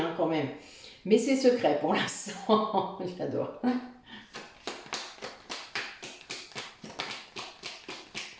quand même. Mais c'est secret pour l'instant. J'adore.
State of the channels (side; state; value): both; identical; correlation 1.00